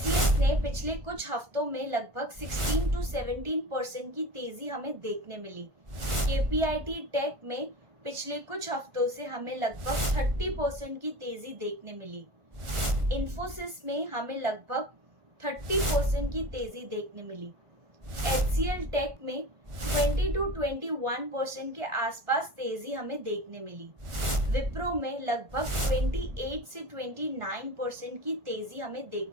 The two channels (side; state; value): left; late; 1.5 ms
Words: ने पिछले कुछ हफ्तों में लगभग 16 to 17% की तेजी हमें देखने मिली। केपीआईटी टेक में पिछले कुछ हफ्तों से हमें लगभग 30% की तेजी देखने मिली। इन्फोसिस में हमें लगभग 30% की तेजी देखने मिली। एचसीएल टेक में 20 to 21% के आसपास तेजी हमें देखने मिली। विप्रो में लगभग 28 से 29% की तेजी हमें